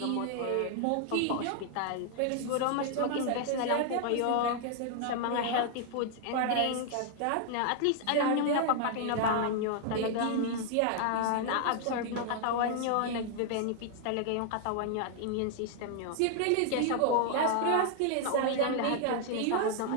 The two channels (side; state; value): both; different; correlation 0.00